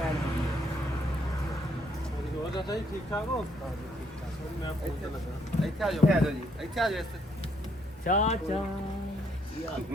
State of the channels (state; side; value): normal; both; correlation 0.70